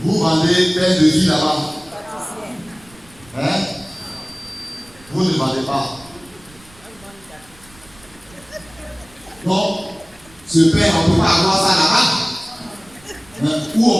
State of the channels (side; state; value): right; noise; rumble, 26 dB below the sound